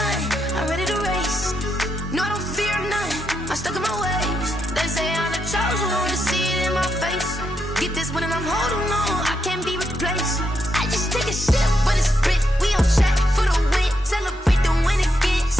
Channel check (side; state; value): both; normal; correlation 0.81